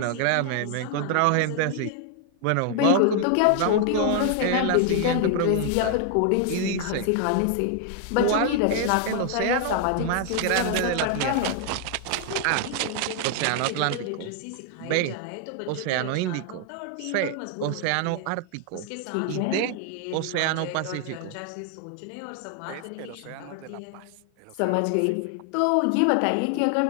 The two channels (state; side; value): different; both; correlation 0.00